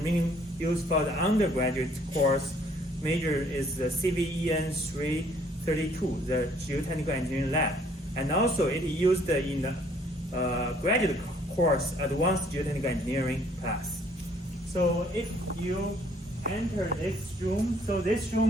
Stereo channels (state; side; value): normal; both; correlation 0.62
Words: used for the undergraduate course. Major is the CVEN 332, the Geotechnical Engineering Lab. And also it is used in the graduate course, Advanced Geotechnical Engineering class. So if you enter this room, so this